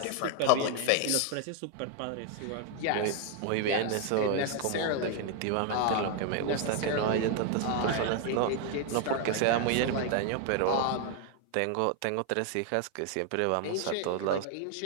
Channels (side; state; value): both; different; correlation 0.00